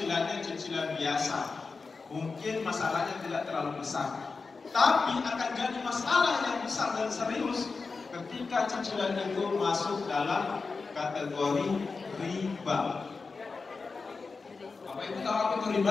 cicilan biasa, mungkin masalahnya tidak terlalu besar. Tapi akan jadi masalah yang besar dan serius ketika cicilan itu masuk dalam kategori riba. Bapak Ibu tahu apa itu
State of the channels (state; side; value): quieter; right; 4.4 dB